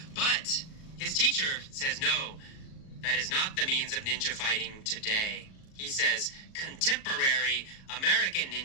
But his teacher says, no, that is not the means of ninja fighting today. He says contemporary American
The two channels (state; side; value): late; right; 38 ms